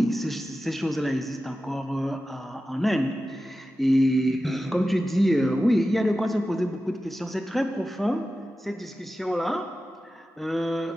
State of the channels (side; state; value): both; normal; correlation 0.93